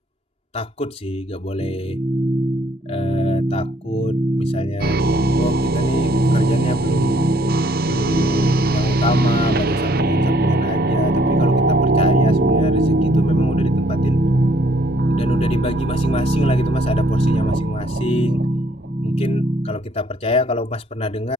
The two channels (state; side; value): normal; both; correlation 0.64